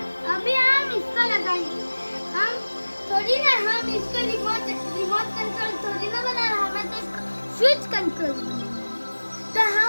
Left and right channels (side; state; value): both; inverted; correlation -1.00